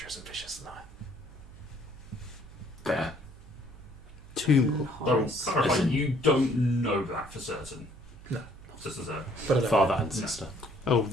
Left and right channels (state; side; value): noise; right; hum, 19 dB below the sound